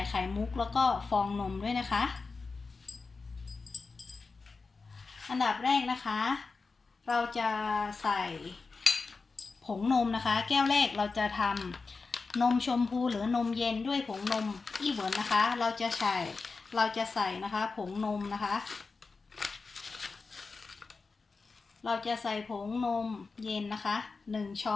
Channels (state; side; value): quieter; right; 4.3 dB